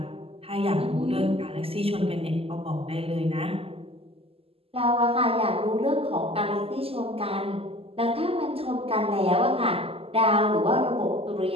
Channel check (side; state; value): left; late; 0.28 ms